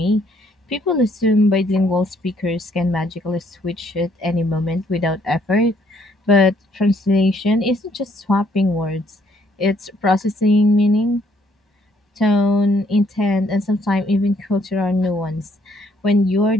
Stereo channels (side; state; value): both; normal; correlation 0.67